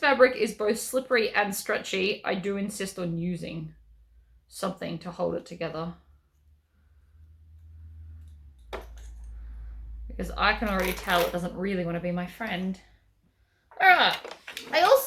is both slippery and stretchy, I do insist on using something to hold it together. Because I can already tell it doesn't really want to be my friend. All right. I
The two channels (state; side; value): identical; both; correlation 1.00